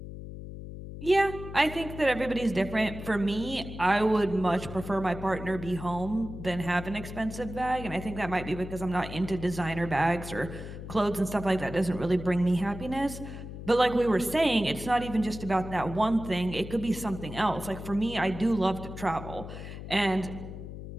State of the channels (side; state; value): left; noise; hum, 10 dB below the sound